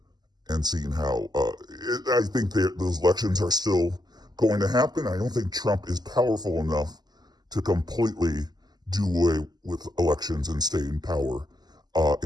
and seeing how I think those elections are still going to happen. I don't think Trump is powerful enough to completely do away with elections and stay in power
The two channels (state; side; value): late; left; 0.20 ms